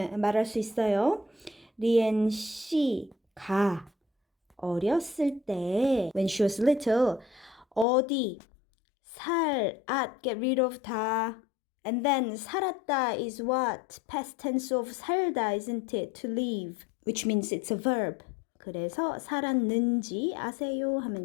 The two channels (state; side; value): drops out; right; at 7.9 s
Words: 말할 수 있어요? 리엔 씨가 어렸을 때, when she was little, 어디, get rid of 다. And then 살았다 is what? Past tense of 살다, isn't it? To live, which means it's a verb. 그래서 살았는지 아세요?